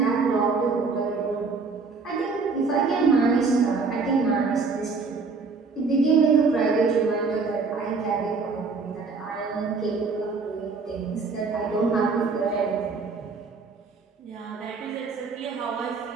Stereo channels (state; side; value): quieter; left; 4.5 dB